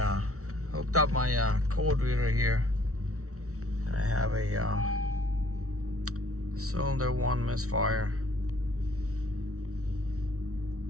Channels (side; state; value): left; late; 0.64 ms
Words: hooked up my code reader here. I have a cylinder 1 misfire